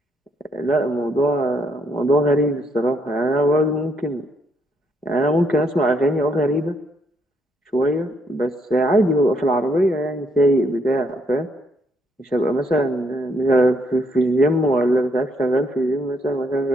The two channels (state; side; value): normal; both; correlation 0.73